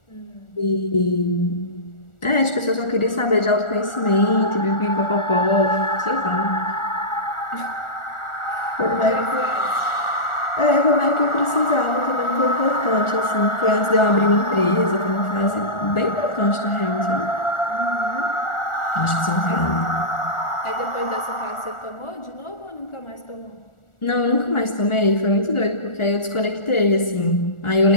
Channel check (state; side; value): late; right; 1.4 ms